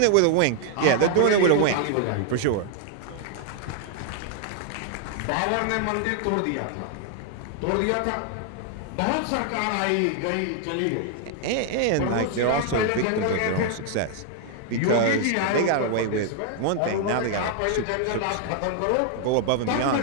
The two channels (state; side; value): different; both; correlation 0.00